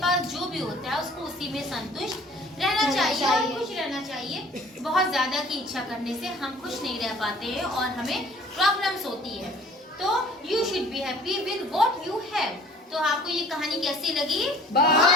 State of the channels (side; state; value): both; normal; correlation 0.52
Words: पास जो भी होता है उसको उसी में संतुष्ट रहना चाहिए और खुश रहना चाहिए। बहुत ज्यादा की इच्छा करने से हम खुश नहीं रह पाते हैं और हमें प्रॉब्लम्स होती है। तो you should be happy with what you have. तो आपको ये कहानी कैसी लगी? बहुत